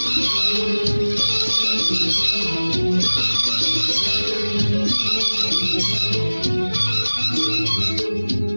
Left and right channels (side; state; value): both; inverted; correlation -1.00